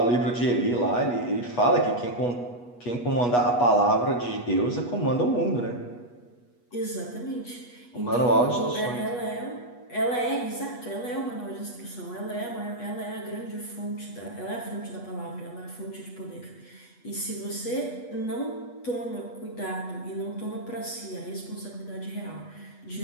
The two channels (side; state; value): right; late; 8.3 ms